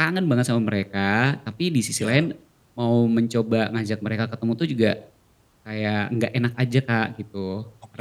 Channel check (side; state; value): both; identical; correlation 1.00